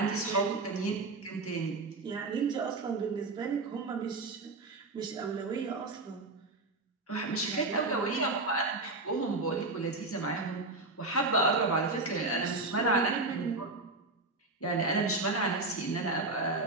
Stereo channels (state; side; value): quieter; left; 3.2 dB